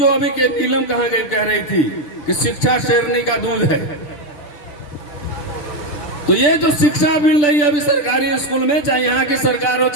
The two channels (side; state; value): right; late; 6.8 ms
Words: अभी के नीलम कहां गई कह रही थी कि शिक्षा शेरनी का दूध है। तो ये जो शिक्षा मिल रही है अभी सरकारी स्कूल में, चाहे यहाँ की सरकार हो